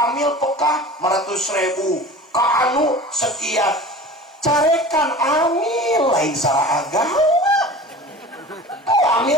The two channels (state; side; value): normal; both; correlation 0.38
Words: amil pekah 500.000 ka anu sekian carekan amil lain salah agama.